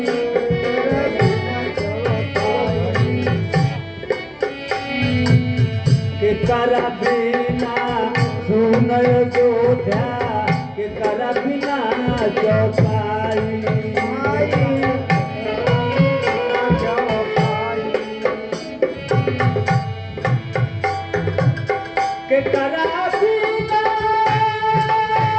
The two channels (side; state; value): both; identical; correlation 1.00